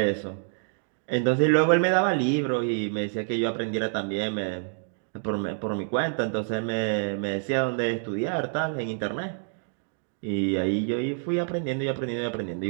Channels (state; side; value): silent; left; 57 dB below the other